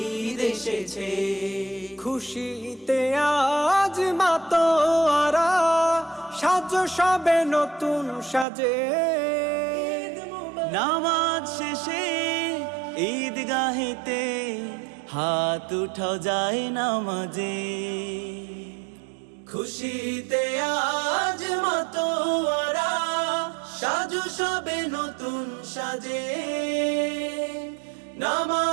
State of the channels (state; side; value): drops out; left; at 8.5 s